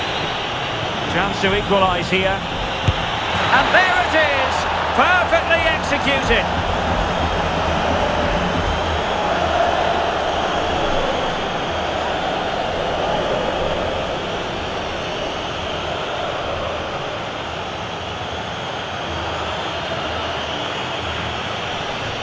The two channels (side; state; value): both; identical; correlation 1.00